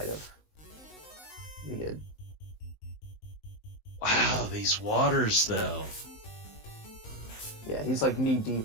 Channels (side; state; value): right; late; 19 ms